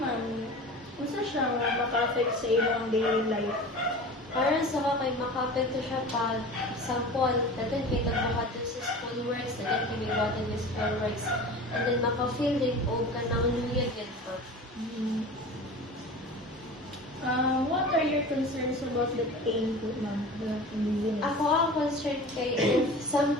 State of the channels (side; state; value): both; normal; correlation 0.36